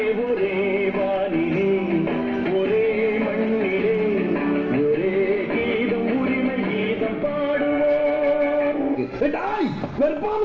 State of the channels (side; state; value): both; identical; correlation 1.00